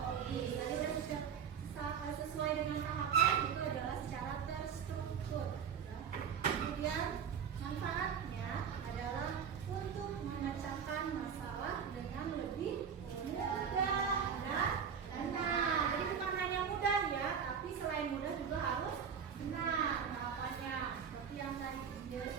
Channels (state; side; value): quieter; left; 7.2 dB